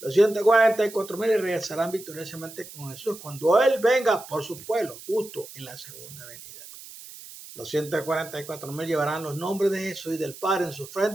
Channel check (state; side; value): noise; right; hiss, 16 dB below the sound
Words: 144.000 regresarán victoriosamente con Jesús cuando Él venga por su pueblo, justo en la segunda venida. Los 144.000 llevarán los nombres de Jesús y del Padre en su